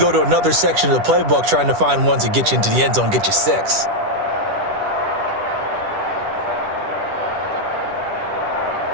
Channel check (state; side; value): late; left; 10 ms